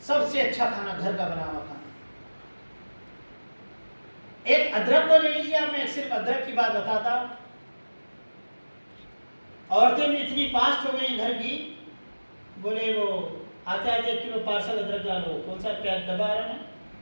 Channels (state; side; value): inverted; both; correlation -1.00